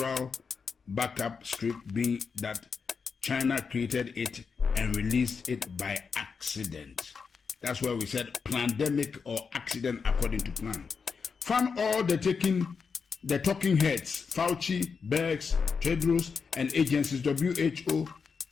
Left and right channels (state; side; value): quieter; right; 5.5 dB